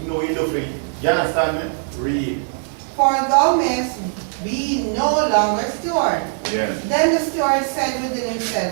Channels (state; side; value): silent; left; 64 dB below the other